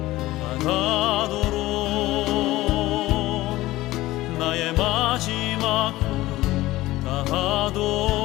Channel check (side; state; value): right; quieter; 17.4 dB